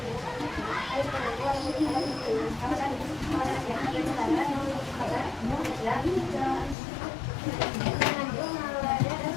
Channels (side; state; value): right; drops out; at 6.8 s